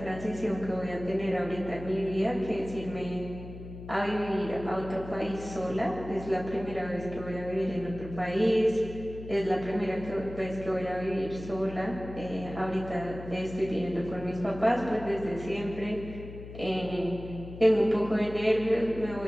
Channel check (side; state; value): left; noise; hum, 12 dB below the sound